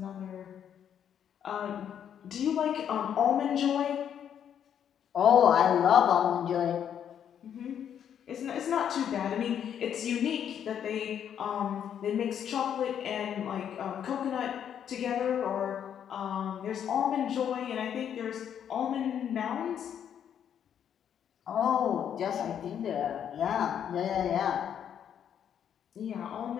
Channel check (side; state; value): right; quieter; 9.0 dB